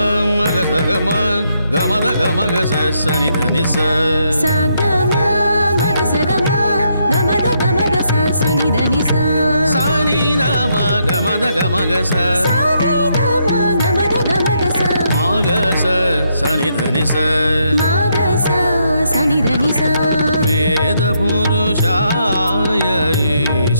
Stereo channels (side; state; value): both; inverted; correlation -0.77